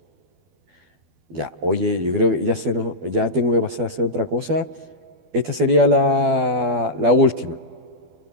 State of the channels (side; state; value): left; late; 12 ms